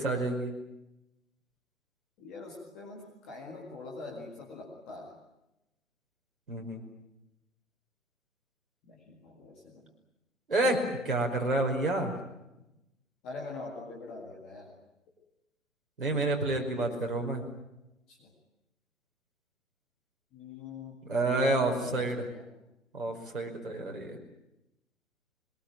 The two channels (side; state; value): both; normal; correlation 0.47